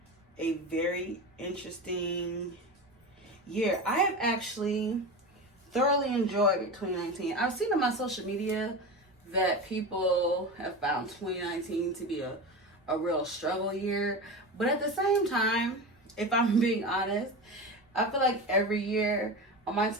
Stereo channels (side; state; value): both; normal; correlation 0.25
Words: a very interesting year. I have actually thoroughly enjoyed 2019. I've seen on my social media that people have found 2019 to be a real struggle year. But at the same time, if I'm being honest, I feel like every year on my